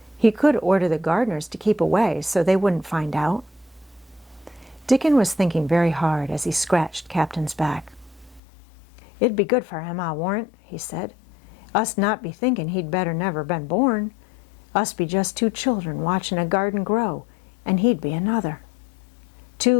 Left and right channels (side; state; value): right; drops out; at 8.4 s